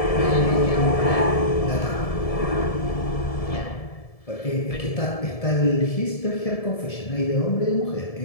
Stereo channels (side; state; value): right; late; 1.7 ms